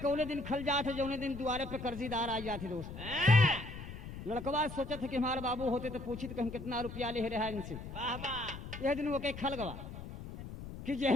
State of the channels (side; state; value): left; noise; rumble, 10 dB below the sound